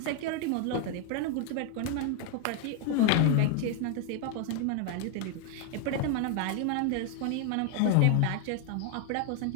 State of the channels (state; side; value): different; both; correlation 0.00